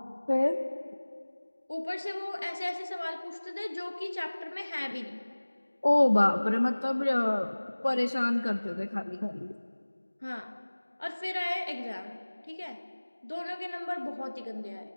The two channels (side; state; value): both; inverted; correlation -1.00